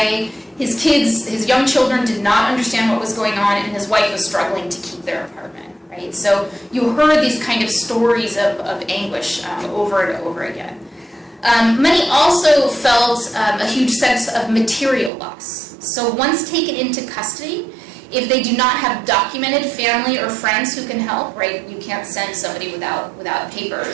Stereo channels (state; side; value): drops out; left; at 15.1 s